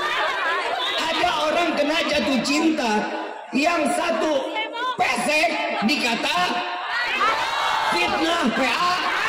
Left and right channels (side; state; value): both; identical; correlation 1.00